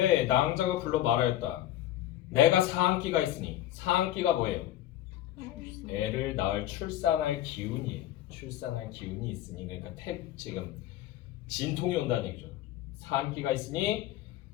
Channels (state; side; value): quieter; right; 13.2 dB